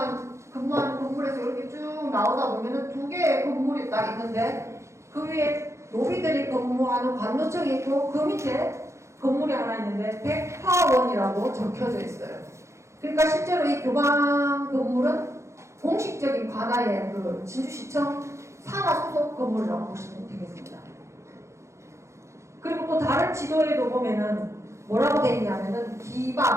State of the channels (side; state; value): left; late; 0.14 ms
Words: 건물에서 이렇게 쭉 나오다 보면은 두 개의 건물이 딱 있는데 그 위에 노비들이 근무하는 관노청이 있고 그 밑에 건물이 하나 있는데 백화원이라고 적혀져 있어요. 그러니까 실제로 이 교방 건물은 공식적인 관아의 그 진주시청 산하 소속 건물이라고 보시면 되겠습니다. 그리고 또 다른 지도에도 보면은 뭐라고 되어 있냐면은